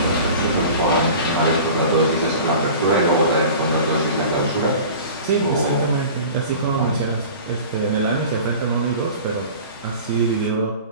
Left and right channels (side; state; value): both; inverted; correlation -0.40